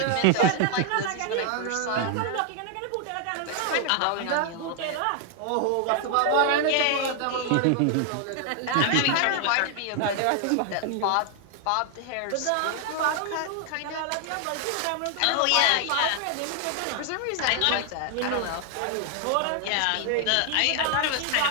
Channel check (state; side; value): different; both; correlation 0.00